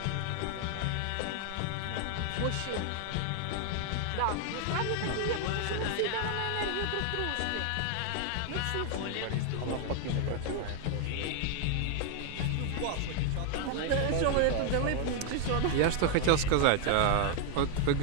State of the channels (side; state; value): both; different; correlation 0.00